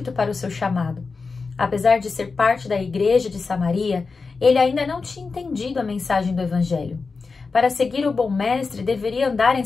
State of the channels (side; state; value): right; quieter; 4.5 dB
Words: para o seu chamado. Apesar de ser parte da igreja de Samaria, ele ainda não tinha entendido a mensagem do Evangelho. Para seguir o bom mestre, deveria andar em